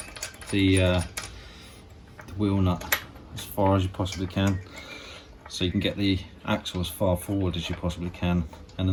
the wheel nut as far as you possibly can, so you can get the axle as far forward as you possibly can, and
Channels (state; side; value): identical; both; correlation 1.00